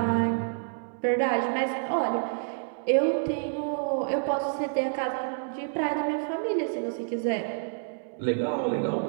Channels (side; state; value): left; silent; digital silence